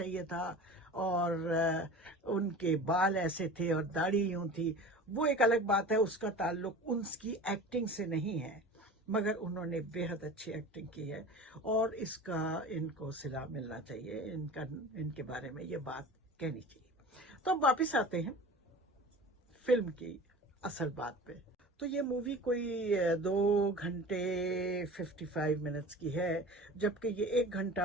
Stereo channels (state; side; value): normal; both; correlation 0.37